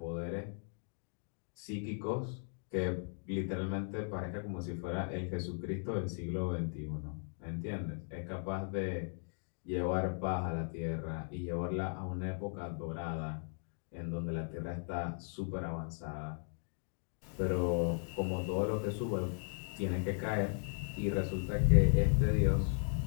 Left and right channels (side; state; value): right; silent; 53 dB below the other